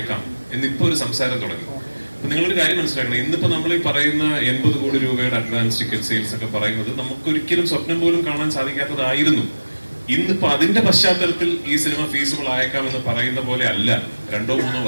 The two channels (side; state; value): both; inverted; correlation -1.00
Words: എന്നിപ്പോ ഒരു സംസാരം തുടങ്ങി. അപ്പൊ നിങ്ങളൊരു കാര്യം മനസ്സിലാക്കണം, ഇന്നിപ്പോ നമ്മൾ ഈ പറയുന്ന 80 കോടി രൂപയുടെ അഡ്വാൻസ് ടിക്കറ്റ് സെയിൽസ് ഒക്കെ പറയുന്നത് നമുക്കൊരിക്കലും സ്വപ്നം പോലും കാണാൻ സാധിക്കാത്തതായിരുന്നു. ഇന്നിപ്പോ അതിന്റെ പശ്ചാത്തലത്തിൽ ഈ സിനിമ ഫീസിബിൾ ആയേക്കാം എന്ന് പറയുന്ന പോലെ അല്ല 2-3